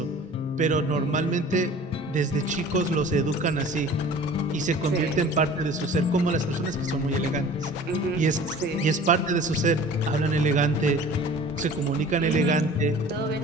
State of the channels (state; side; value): normal; both; correlation 0.44